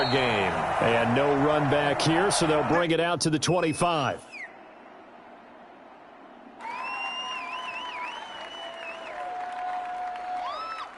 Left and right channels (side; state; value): both; identical; correlation 1.00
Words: game. And no run back here, so they'll bring it out to the 25.